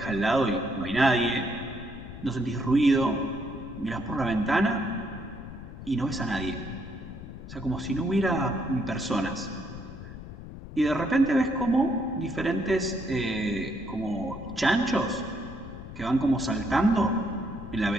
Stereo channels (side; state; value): left; noise; rumble, 13 dB below the sound